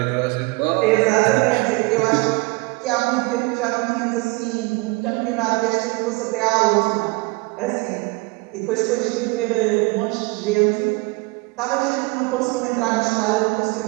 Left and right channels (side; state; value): left; quieter; 26.1 dB